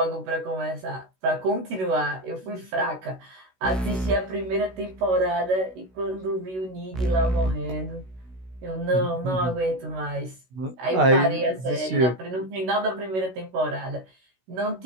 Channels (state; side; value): late; left; 16 ms